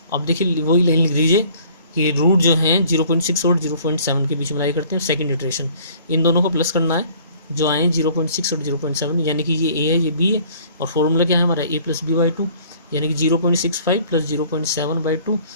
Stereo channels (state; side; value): inverted; both; correlation -0.54